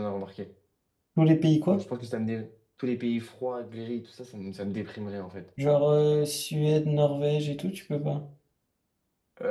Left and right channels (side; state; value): both; identical; correlation 1.00